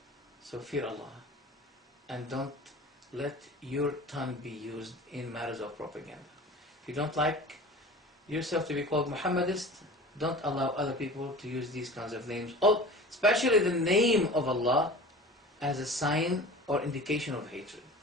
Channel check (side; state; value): both; normal; correlation 0.39